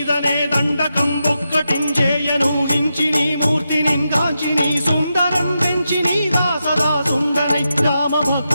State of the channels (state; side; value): inverted; both; correlation -0.87